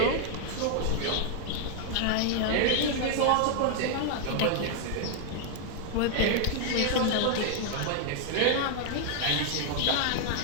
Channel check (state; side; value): different; both; correlation 0.00